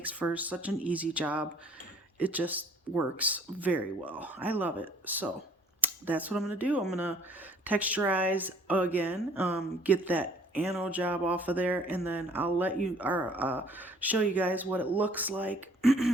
for such an easy job. It just works very well. I love it. So that's what I'm going to do. I'm going to texturize again, get that anode job off of there, and then I'll let you show you guys what it looks like,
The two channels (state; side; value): normal; both; correlation 0.57